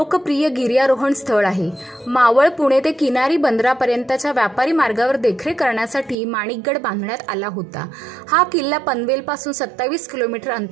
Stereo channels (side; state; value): left; drops out; at 6.2 s